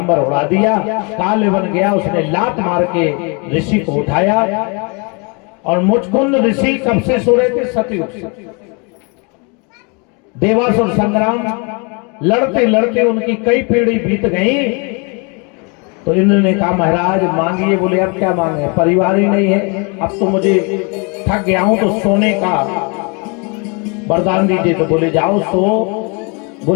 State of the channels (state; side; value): quieter; right; 32.6 dB